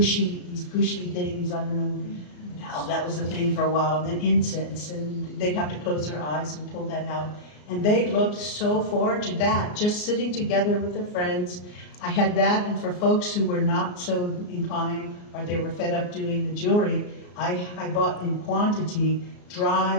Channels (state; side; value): late; right; 34 ms